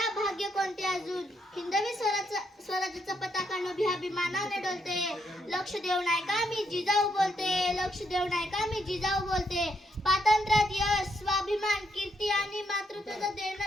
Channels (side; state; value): both; normal; correlation 0.76